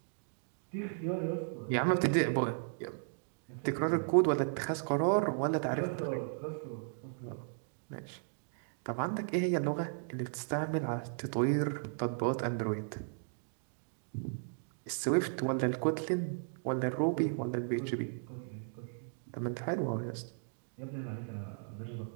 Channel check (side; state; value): left; silent; digital silence